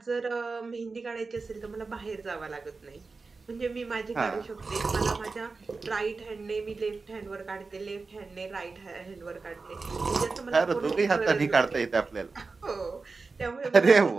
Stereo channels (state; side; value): quieter; left; 4.1 dB